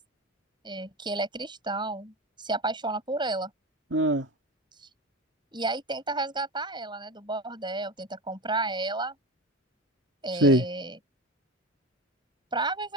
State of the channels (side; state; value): both; normal; correlation 0.24